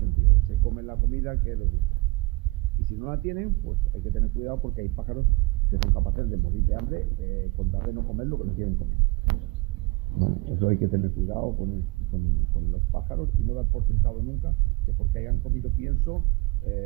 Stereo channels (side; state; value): left; quieter; 23.8 dB